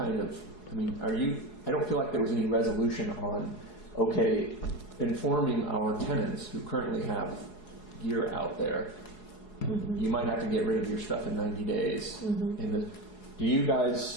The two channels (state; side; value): late; right; 4.7 ms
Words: of, I don't feel like there was any resolution on, okay, informing our tenants who currently have gear out there, you might have to get rid of your stuff in 90 days. Do you